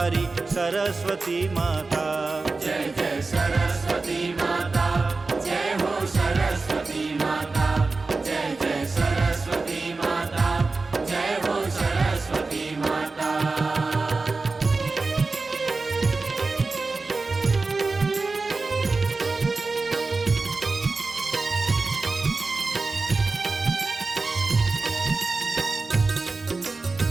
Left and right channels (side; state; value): left; quieter; 3.8 dB